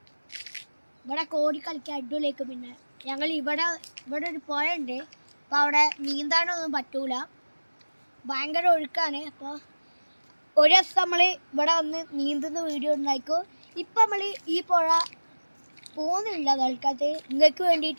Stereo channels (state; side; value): inverted; both; correlation -1.00